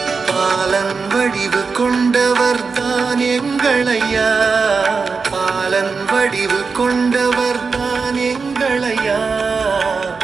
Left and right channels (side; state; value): left; quieter; 4.9 dB